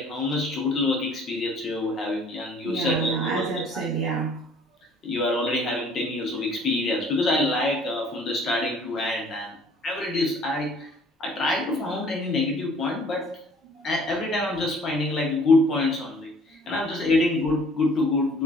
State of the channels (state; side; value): normal; both; correlation 0.55